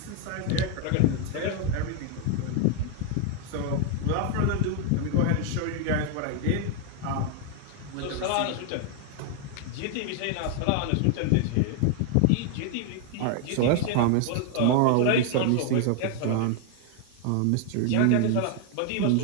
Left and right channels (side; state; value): both; different; correlation 0.01